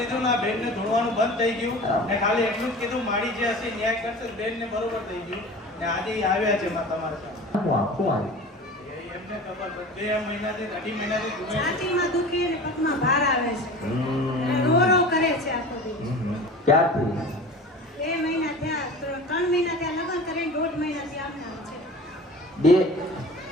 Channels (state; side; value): normal; both; correlation 0.37